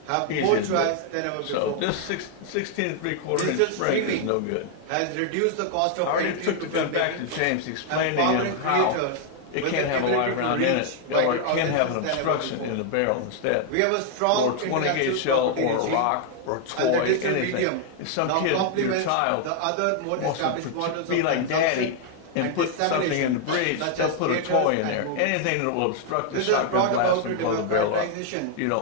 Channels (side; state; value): both; different; correlation 0.00